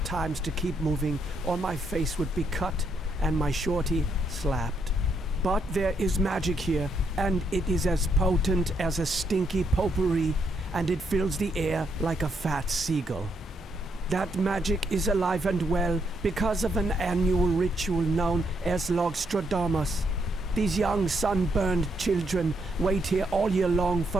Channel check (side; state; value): both; normal; correlation 0.76